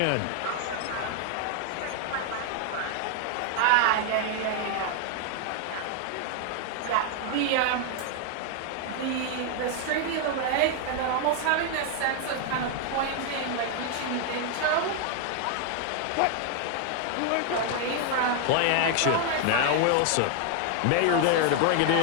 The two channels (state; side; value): different; both; correlation 0.00